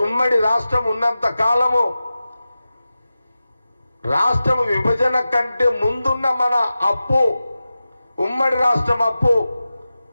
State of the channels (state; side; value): inverted; both; correlation -0.94